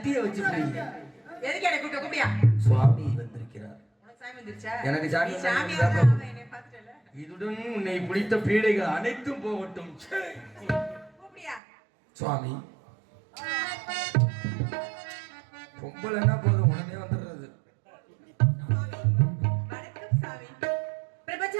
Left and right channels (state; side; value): drops out; left; at 11.6 s